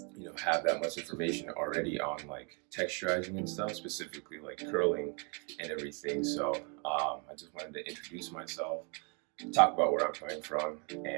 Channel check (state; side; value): quieter; left; 35.7 dB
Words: that much information already on like texturizing and stuff, specifically like curling and everything. So I just wanted to introduce myself, talk about where I'm coming from,